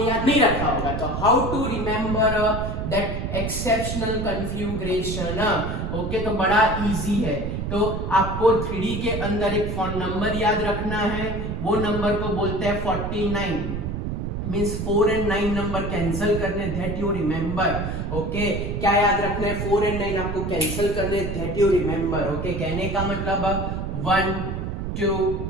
याद नहीं रखा होगा। तो how to remember that exceptional configuration. Okay तो बड़ा इजी है। तो आपको 3D के अंदर एक फोन नंबर याद रखना है, वो नंबर को बोलते हैं 49। मींस 4 and 9 नंबर कैंसिल करने, दैट यू रिमेंबर। ओके क्या याद रखना है, 4 and 9 आपको कैंसिल करने, दैट यू रिमेंबर। ओके कहने का मतलब 1 2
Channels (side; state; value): right; noise; rumble, 3 dB below the sound